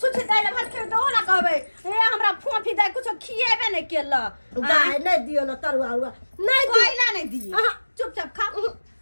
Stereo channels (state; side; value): inverted; both; correlation -1.00